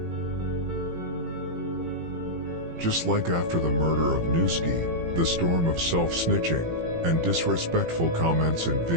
Just like after the murder of Newski, the storm of self-snitching and disrespectful comments and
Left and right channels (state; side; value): late; left; 18 ms